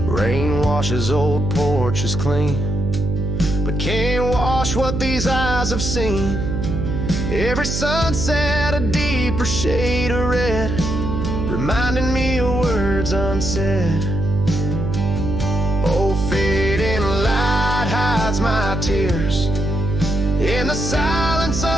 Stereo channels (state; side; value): noise; right; hum, 2 dB below the sound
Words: Rain washes old porches clean, but can't wash what these eyes have seen. Every sunset a deeper shade of red, reminding me of words unsaid. Oh, fading light hides my tears in the silence